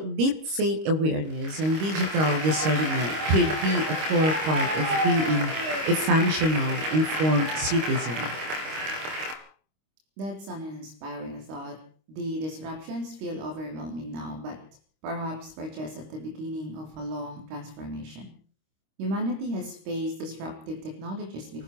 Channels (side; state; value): left; late; 26 ms